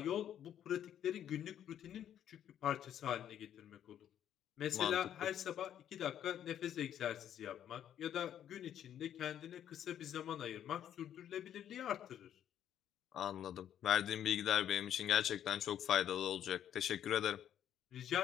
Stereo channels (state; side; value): quieter; right; 10.2 dB